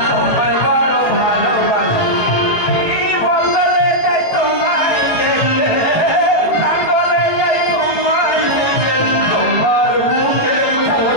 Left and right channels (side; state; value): right; late; 18 ms